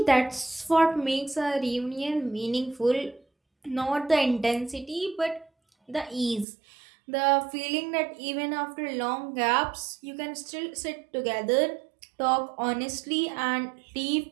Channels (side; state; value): left; drops out; at 6.5 s